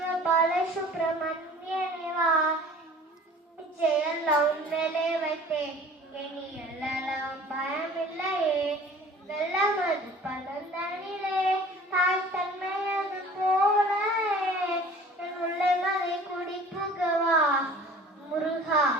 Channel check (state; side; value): normal; both; correlation 0.47